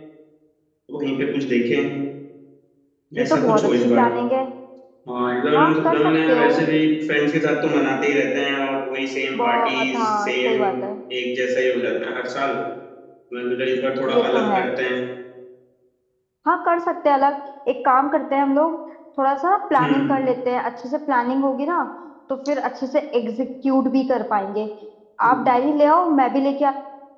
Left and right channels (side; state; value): both; identical; correlation 1.00